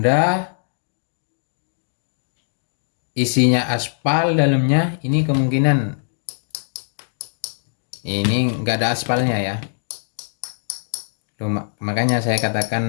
isinya aspal dalamnya. Ini kemungkinan ini nggak ada aspalnya ya. Makanya saya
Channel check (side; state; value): right; silent; digital silence